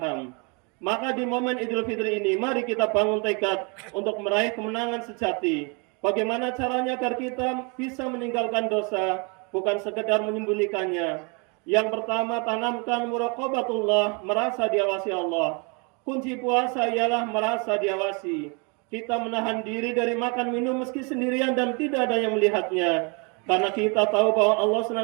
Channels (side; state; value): left; quieter; 33.0 dB